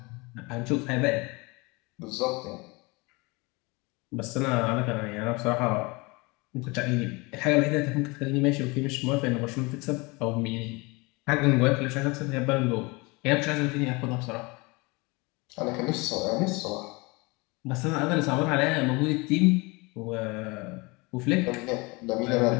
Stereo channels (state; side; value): quieter; right; 26.0 dB